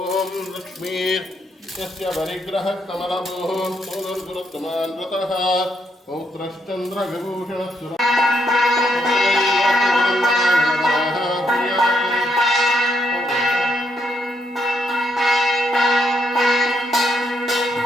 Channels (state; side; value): normal; both; correlation 0.76